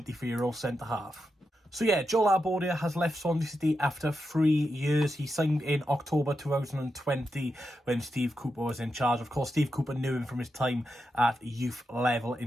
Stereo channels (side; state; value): both; normal; correlation 0.87